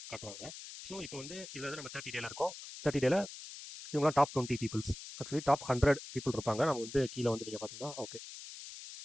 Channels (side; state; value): left; noise; hiss, 12 dB below the sound